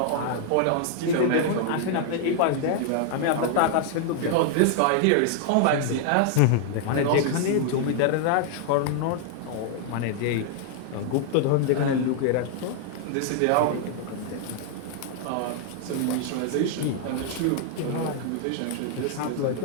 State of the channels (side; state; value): both; different; correlation 0.00